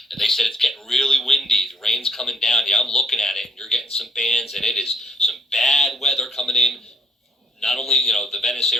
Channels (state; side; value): normal; both; correlation 0.68